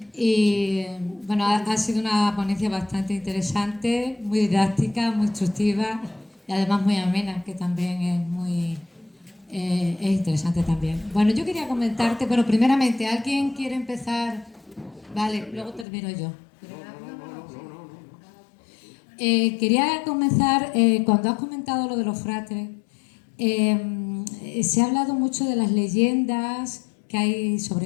Y bueno, ha sido una ponencia bastante interesante, muy didáctica, muy instructiva y además muy amena, que también es interesante también. Bueno, yo quería comentarte, pero primeramente, ¿alguien quiere empezar? Vale, luego termino yo. Quería comenzar, cuando has comentado lo de los fratres, se ha hablado mucho de las leyendas que hay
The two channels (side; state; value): right; drops out; at 15.9 s